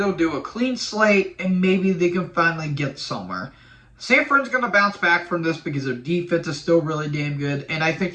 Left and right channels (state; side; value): identical; both; correlation 1.00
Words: do a clean slate, and maybe they can finally get somewhere. San Fran's going to bounce back from this because their defense is still really damn good, and I think